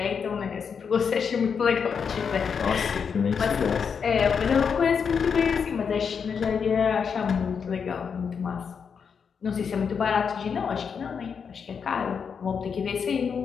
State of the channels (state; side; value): quieter; right; 6.4 dB